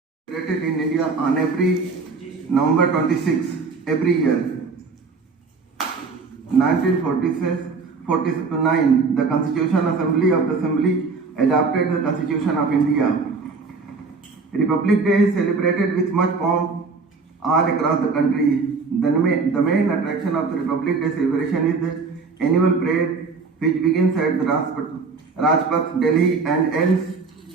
Celebrated in India on every November 26 every year. 1949, the Constitutional Assembly of the Assembly adopted the Constitution of India. Republic Day is celebrated with much pomp all across the country. The main attraction of the Republic Day celebration is the annual parade, which begins at the Rajpath, Delhi, and ends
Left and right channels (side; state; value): left; quieter; 4.5 dB